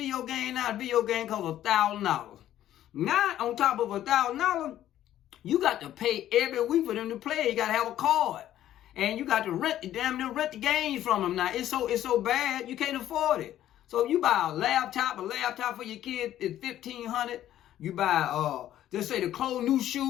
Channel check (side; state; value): right; quieter; 12.4 dB